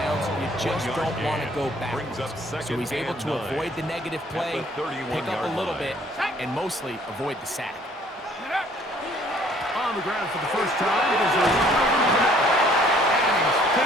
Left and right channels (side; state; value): both; normal; correlation 0.59